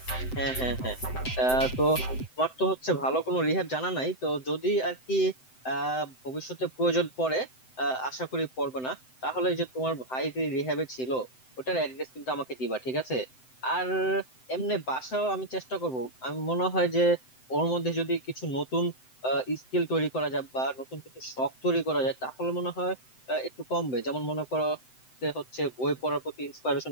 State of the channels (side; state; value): right; late; 7.8 ms